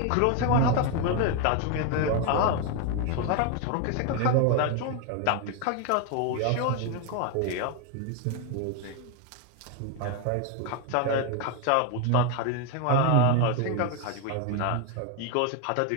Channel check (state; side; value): different; both; correlation 0.01